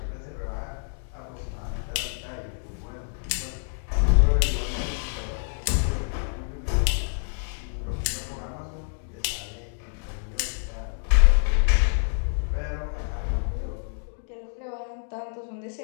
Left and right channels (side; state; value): right; silent; digital silence